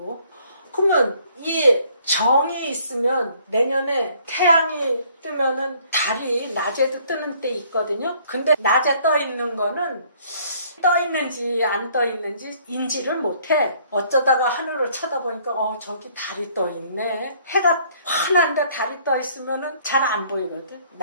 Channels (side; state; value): both; inverted; correlation -0.61